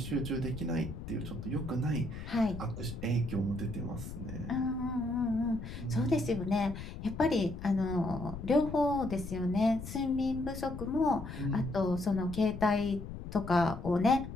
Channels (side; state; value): left; noise; rumble, 9 dB below the sound